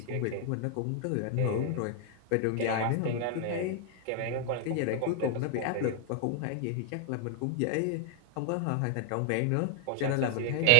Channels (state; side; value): different; both; correlation 0.00